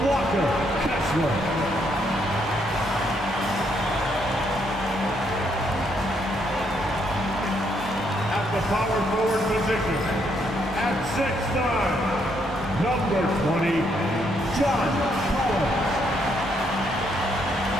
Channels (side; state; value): both; normal; correlation 0.73